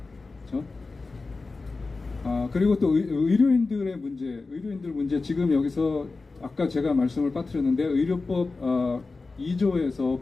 그렇죠? 그리고 또 의료인들 문제, 지금 여기서 아까 제가 말씀을 빠뜨렸는데, 의료법 2조에서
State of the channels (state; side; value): quieter; right; 3.8 dB